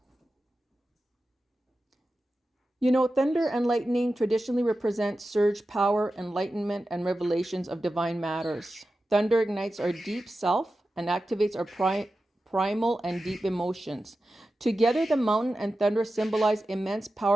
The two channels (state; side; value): normal; both; correlation 0.93